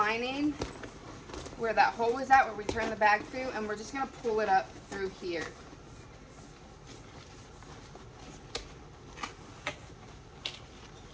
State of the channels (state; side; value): identical; both; correlation 1.00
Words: where that hole was at, where we turned the bag through, and we're just going to pull it up through here.